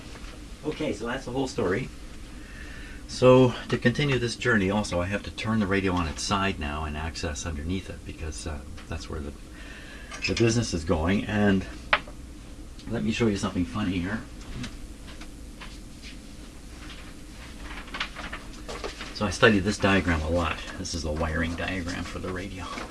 Okay, so that's the whole story. So to continue this journey, also I have to turn the radio on its side now and access underneath it because that's where the business is going. And let me show you something funny here. So I studied this diagram a lot. This is the wiring diagram for the radio.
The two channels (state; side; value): identical; both; correlation 1.00